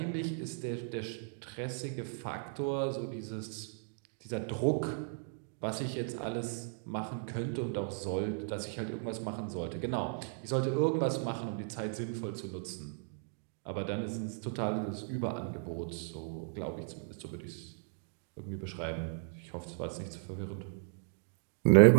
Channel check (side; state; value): left; silent; digital silence